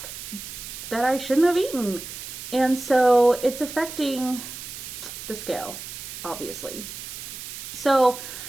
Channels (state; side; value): noise; right; hiss, 10 dB below the sound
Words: that I shouldn't have eaten. And so it's affecting the scale, obviously. So